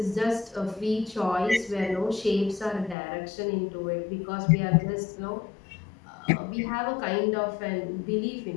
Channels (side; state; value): right; drops out; at 3.0 s